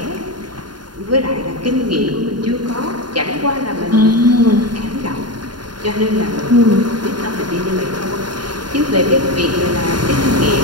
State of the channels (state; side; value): late; left; 0.71 ms